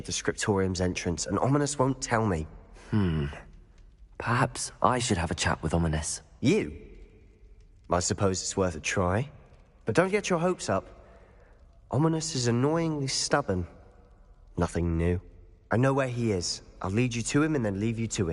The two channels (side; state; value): both; identical; correlation 1.00